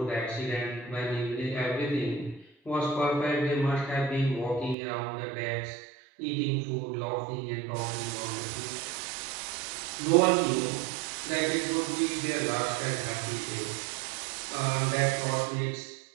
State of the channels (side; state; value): left; drops out; at 4.8 s